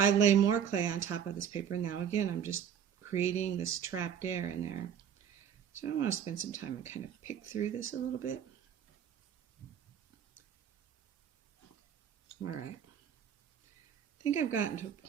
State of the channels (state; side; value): quieter; left; 8.6 dB